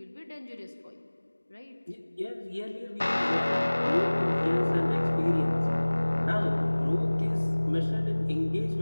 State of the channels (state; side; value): inverted; both; correlation -1.00